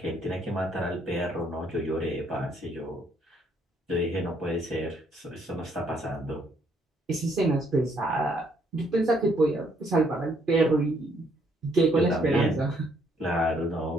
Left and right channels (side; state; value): both; normal; correlation 0.69